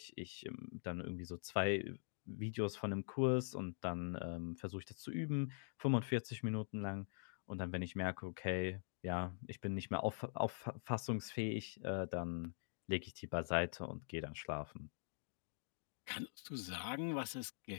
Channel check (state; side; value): silent; right; digital silence